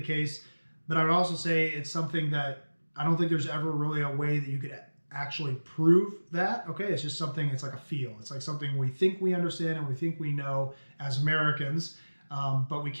case, but I would also say it's something that I don't think there's ever really a way that you could actually prove that. Okay, it's just something, it's like a feel. It's like something we think we understand and we think we know as Americans. But we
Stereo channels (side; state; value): both; inverted; correlation -1.00